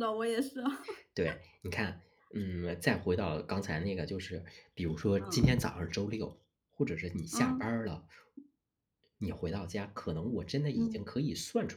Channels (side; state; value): both; identical; correlation 1.00